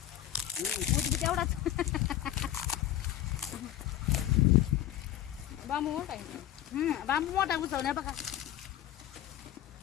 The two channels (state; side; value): quieter; right; 12.5 dB